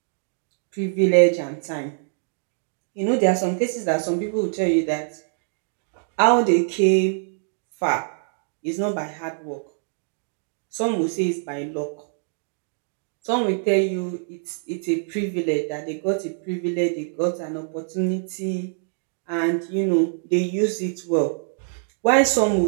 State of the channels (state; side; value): silent; left; digital silence